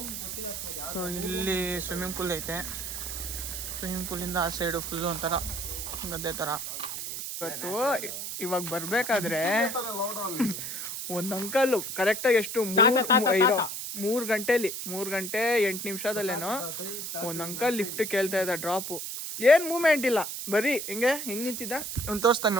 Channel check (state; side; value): noise; right; hiss, 5 dB below the sound